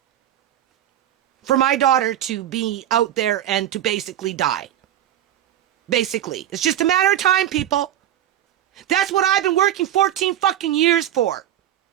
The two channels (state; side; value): quieter; left; 11.7 dB